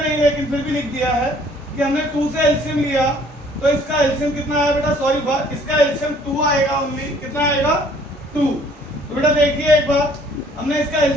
लेकिन फिर भी लिख दिया है कि हमने 2 से एलसीएम लिया, तो इसका एलसीएम कितना आया बेटा, सॉरी इसका एलसीएम 2 आएगा ओनली। कितना आएगा, 2। तो बेटा देखिए एक बार, हमने इसका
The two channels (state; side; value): normal; both; correlation 0.58